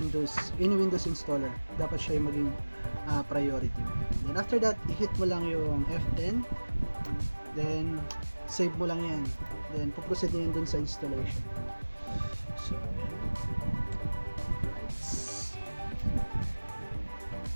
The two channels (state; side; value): inverted; both; correlation -1.00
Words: Windows installer. Dapat siya yung maging priority. Then, after that, i-hit mo lang yung F10. Then, save mo lang yan. Then, puproceed na yan dun sa installation. So,